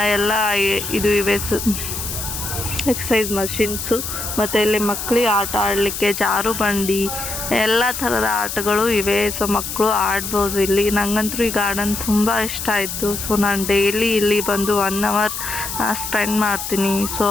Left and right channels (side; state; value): left; noise; hiss, 6 dB below the sound